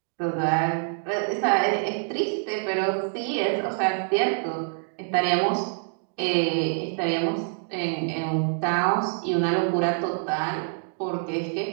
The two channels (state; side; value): silent; left; 61 dB below the other